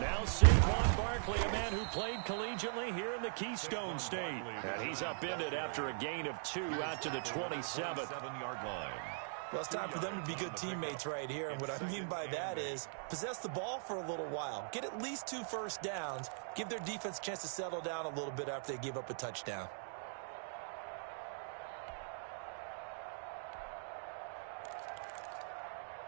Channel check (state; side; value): silent; left; digital silence